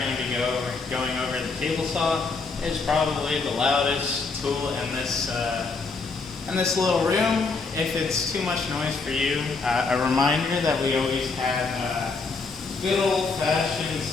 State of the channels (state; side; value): quieter; right; 4.2 dB